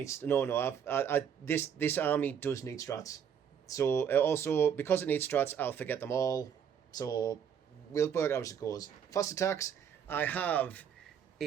No. This army does need strats. So also because it needs strats, I'll forget them all. So we'll work out as it goes. Fast attacks. I have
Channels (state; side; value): quieter; left; 8.1 dB